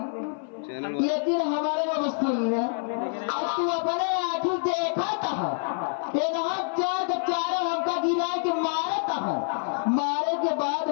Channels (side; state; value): right; silent; 56 dB below the other